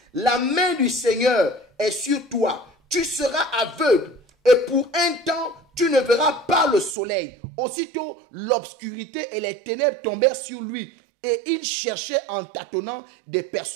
la main du Seigneur est sur toi, tu seras aveugle. Et pour un temps, tu ne verras pas le soleil. Aussitôt, l'obscurité et les ténèbres tombèrent sur lui. Et il cherchait en tâtonnant des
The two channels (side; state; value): left; drops out; at 7.0 s